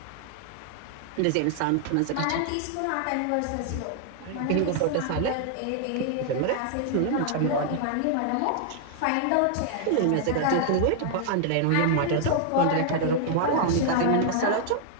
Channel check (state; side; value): different; both; correlation 0.00